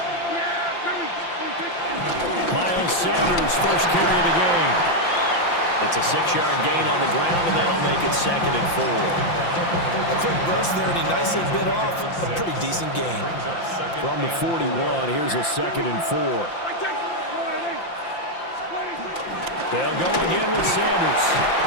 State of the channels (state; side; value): late; right; 5.8 ms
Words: Miles Sanders, first carry of the game. It's a 6-yard gain on the ground, and that'll make it 2nd and 4. A quick burst there, and he nicely bit off a pretty decent gain. From the 41, here's a 2nd and 4. They'll go again with Sanders.